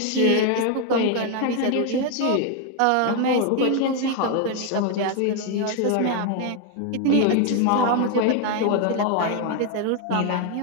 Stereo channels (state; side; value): different; both; correlation 0.01